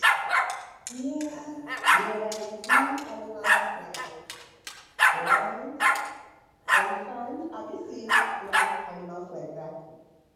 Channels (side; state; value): both; identical; correlation 1.00